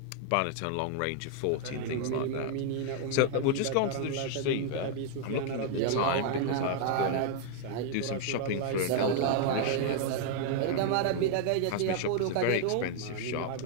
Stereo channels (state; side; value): different; both; correlation 0.00